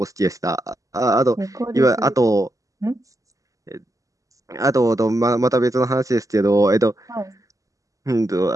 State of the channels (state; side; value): late; left; 0.16 ms